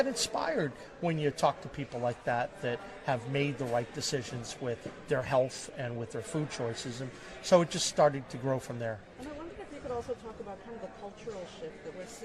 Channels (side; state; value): both; identical; correlation 1.00